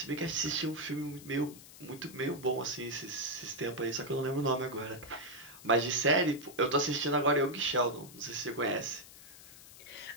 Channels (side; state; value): left; noise; hiss, 18 dB below the sound